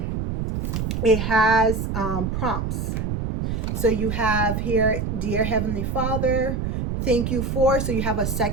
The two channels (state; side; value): noise; right; rumble, 2 dB below the sound